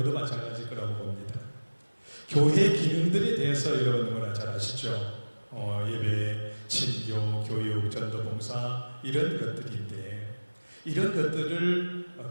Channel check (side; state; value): both; inverted; correlation -1.00